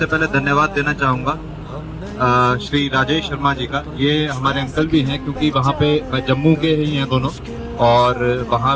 पहले धन्यवाद देना चाहूँगा श्री राजेश शर्मा जी का। ये हमारे अंकल भी हैं, क्योंकि वहाँ पे जम्मू के ही हैं दोनों, और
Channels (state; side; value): identical; both; correlation 1.00